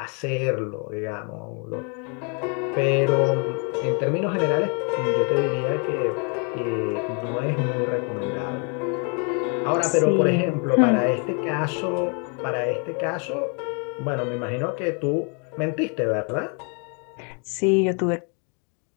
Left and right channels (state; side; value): quieter; right; 37.1 dB